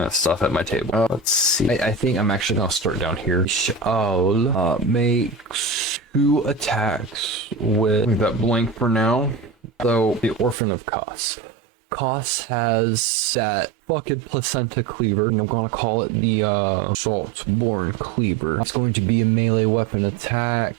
of stuff at my table. Let's see. I think I'm actually gonna start down here. Shall makes 2 attacks with leave that blank for now. So the Orphan of Kos. Kos has that fucking placenta cleaver, and I'm gonna call it the Saltborn cleaver. It's going to be a melee weapon attack.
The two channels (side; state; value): left; drops out; at 10.6 s